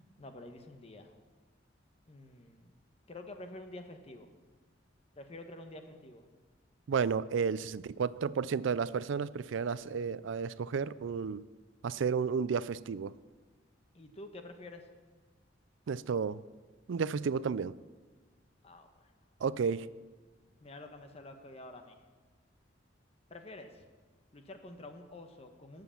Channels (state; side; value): quieter; left; 5.4 dB